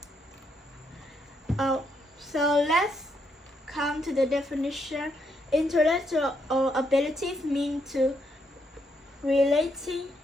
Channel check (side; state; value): both; normal; correlation 0.77